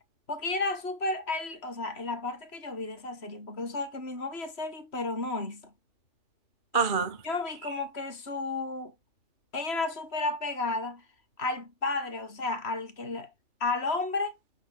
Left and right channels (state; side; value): late; right; 3.0 ms